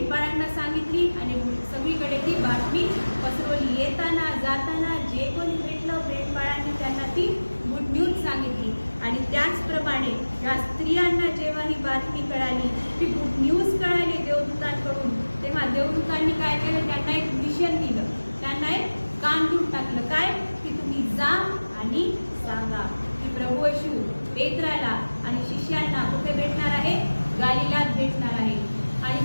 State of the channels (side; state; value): both; inverted; correlation -1.00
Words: सांगितली आणि सगळीकडे ती बातमी पसरवली. येताना जाताना जे कोणी भेटलं मेंढपाळांनी त्यांना ती गुड न्यूज सांगितली. आणि त्याचप्रमाणे या स्त्रियांना जेव्हा ही बातमी कळाली, ती गुड न्यूज कळाली देवदूतांकडून, तेव्हा देवदूतांनी काय केलं? त्यांना एक मिशन दिलं, त्यांना एक काम देऊन टाकलं. काय? की तुम्ही जा आणि सांगा की प्रभू येशू पेत्राला आणि शिष्यांना कुठे भेटणार आहे? गालिलात भेटणार आहे. आणि